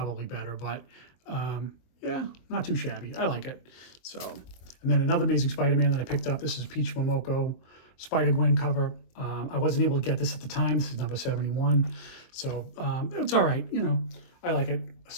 better, but yeah, not too shabby. I like it. So, and then another Amazing Spider-Man that I picked up. This is Peach Momoko Spider-Gwen cover. I wasn't able to get this at the time. This is number 71. So it's all right. You know, I like it.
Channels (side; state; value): right; late; 23 ms